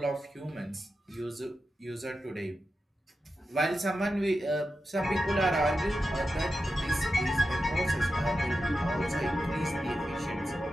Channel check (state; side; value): normal; both; correlation 0.90